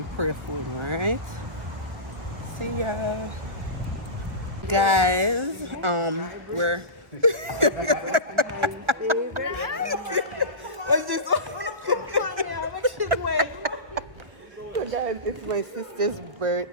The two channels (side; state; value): left; late; 1.2 ms